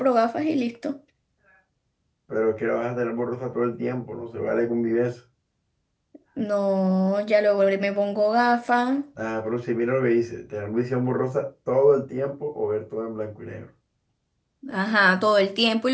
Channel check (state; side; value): identical; both; correlation 1.00